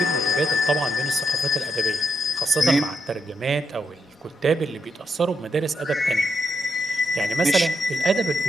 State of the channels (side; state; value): both; normal; correlation 0.81